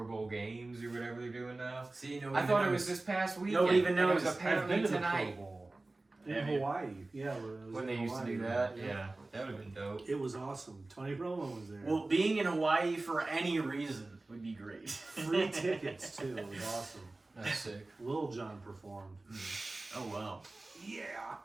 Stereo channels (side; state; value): left; quieter; 3.1 dB